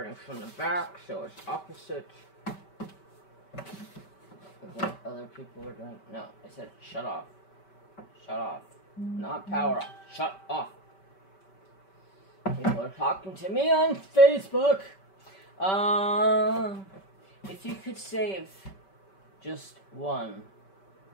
from the back, so it's opposite of what other people are doing. No, I said shut off. Shut off. Not power off. Shut off. People are talking to me on Facebook. If you could save just one,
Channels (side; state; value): right; late; 5.2 ms